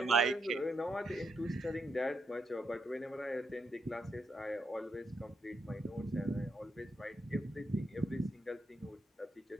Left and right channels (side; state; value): both; normal; correlation 0.80